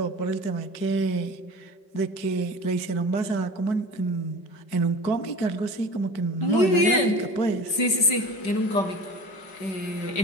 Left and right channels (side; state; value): right; late; 5.2 ms